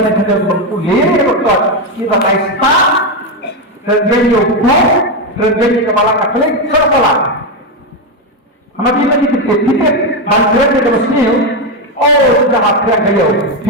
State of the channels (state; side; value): normal; both; correlation 0.08